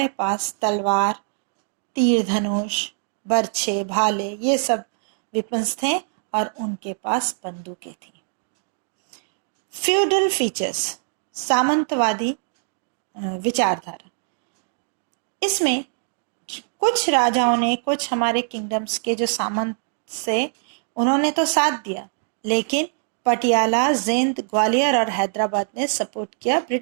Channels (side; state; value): left; silent; digital silence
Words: पास तलवार, तीर धनुष, बर्छे, भाले, ये सब वेपन्स थे और उनके पास बंदूकें थी. Feudal features. सामंतवादी विचारधारा. इसमें कुछ राजाओं ने, कुछ हमारे किंगडम्स के जो सामंत से, उन्होंने तो साथ दिया, लेकिन पटियाला, जिंद, ग्वालियर और हैदराबाद ने सपोर्ट किया